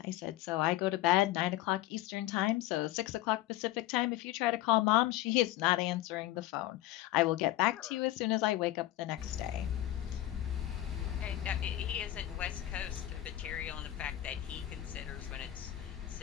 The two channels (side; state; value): right; quieter; 14.6 dB